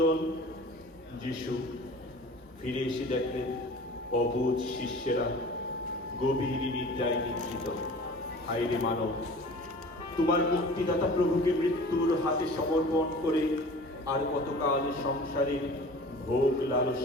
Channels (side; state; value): both; normal; correlation 0.42